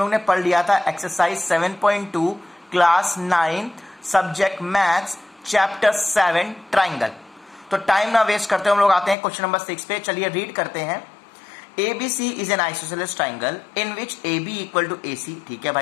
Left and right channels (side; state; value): right; drops out; at 9.2 s